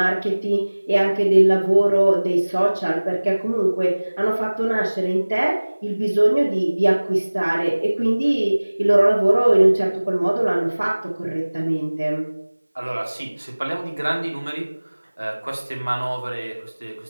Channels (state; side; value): inverted; both; correlation -1.00